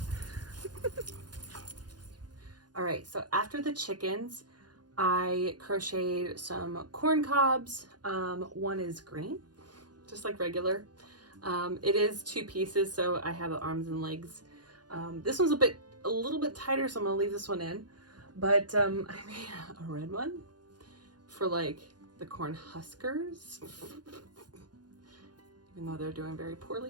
All right, so after the chickens, I crocheted some corn cobs. One is green, just like regular. It is 2 pieces, so I have the arms and legs. This one's a little bit tighter, so I'm gonna leave this one in. But I made a red one for like the corn huskers, even though they're doing very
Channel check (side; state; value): left; late; 0.69 ms